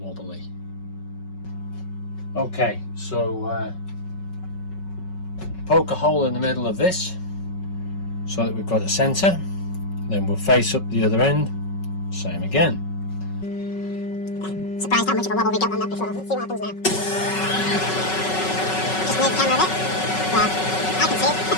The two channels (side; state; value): right; late; 5.3 ms